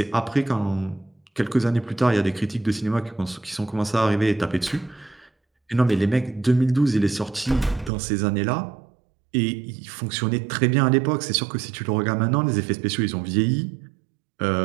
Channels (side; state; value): left; drops out; at 7.9 s